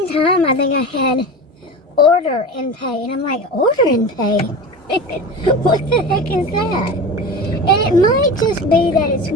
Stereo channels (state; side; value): normal; both; correlation 0.30